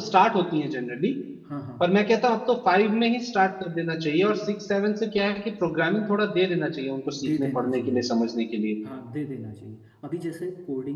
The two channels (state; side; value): identical; both; correlation 1.00